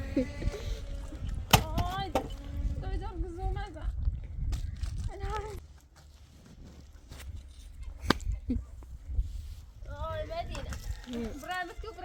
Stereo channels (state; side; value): identical; both; correlation 1.00